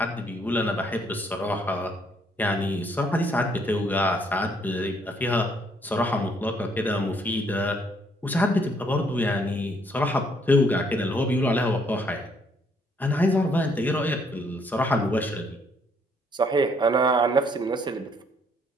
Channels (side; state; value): both; normal; correlation 0.67